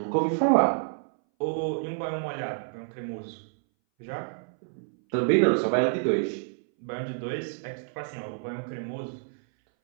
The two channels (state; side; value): silent; left; 59 dB below the other